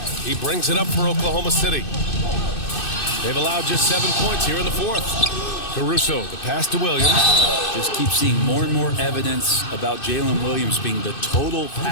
He brings it up for Oklahoma City. They've allowed just 7 points here in the fourth. Caruso, the pass to Williams. Just keep seeing more and more evidence about Jalen Williams being the total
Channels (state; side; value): late; right; 2.6 ms